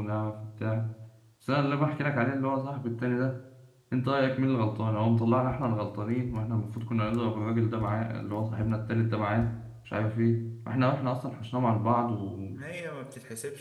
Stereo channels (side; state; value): both; identical; correlation 1.00